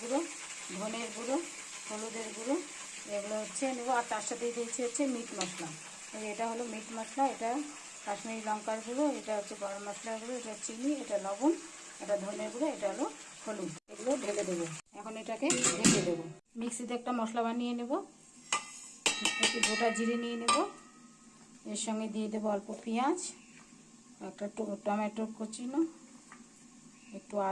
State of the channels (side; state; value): both; identical; correlation 1.00